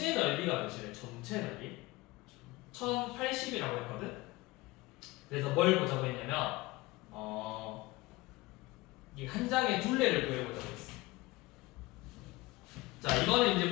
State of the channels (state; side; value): quieter; right; 21.0 dB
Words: 넓이가 몇이래? 전체 넓이? 1080이라고 했거든? 그래서 뭘 보자고 했냐면 이 한 장의 둘레를 구해보자고 했어. 자, 이거는 이제